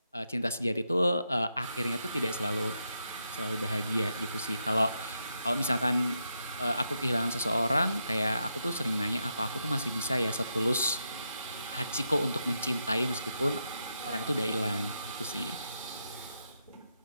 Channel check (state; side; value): inverted; both; correlation -0.83